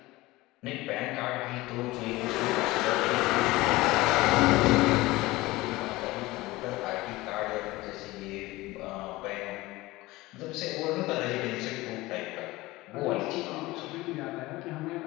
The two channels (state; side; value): quieter; right; 19.7 dB